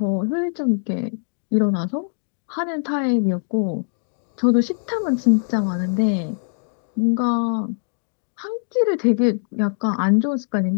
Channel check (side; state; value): right; silent; digital silence